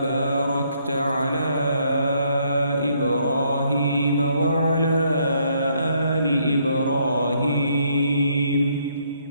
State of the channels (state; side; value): inverted; both; correlation -0.70